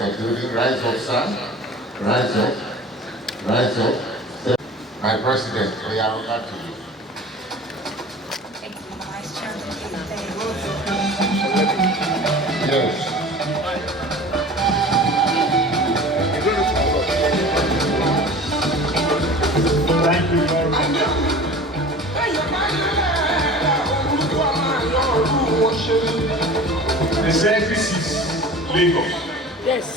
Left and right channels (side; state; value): both; normal; correlation 0.40